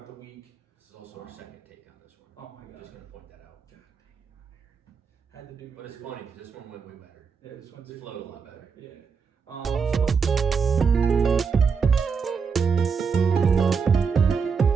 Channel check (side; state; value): left; quieter; 5.7 dB